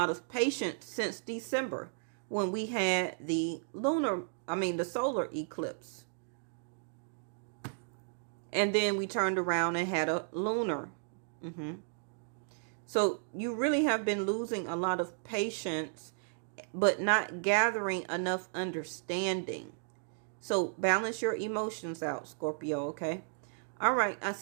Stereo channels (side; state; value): left; silent; digital silence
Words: of patience since December, when we had the solar eclipse. And then we turned around and had a lunar. So you really have been losing a lot of patience, but not gathering enough understanding. So balance your emotions out, Scorpio, okay? All right, I'll